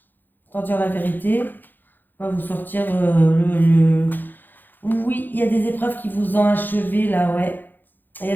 Tant dire la vérité, on va vous sortir Oui, il y a des épreuves qui vous ont achevé là, ouais. Il y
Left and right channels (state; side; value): late; right; 0.089 ms